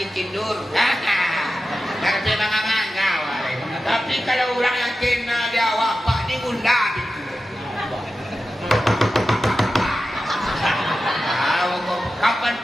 tidur. Rapi mangang-mangang. Tapi kalau orang yang kenal dia awak, pak ni bunda gitu. Kapan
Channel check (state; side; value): normal; both; correlation 0.93